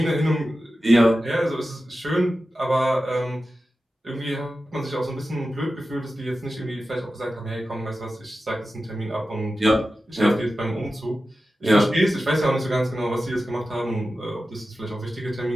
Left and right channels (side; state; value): both; normal; correlation 0.93